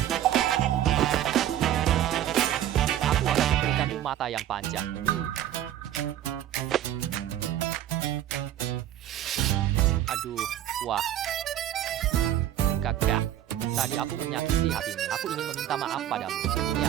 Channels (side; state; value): left; quieter; 11.9 dB